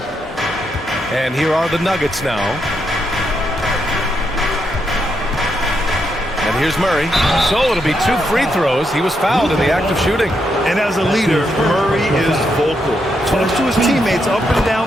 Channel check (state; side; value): normal; both; correlation 0.80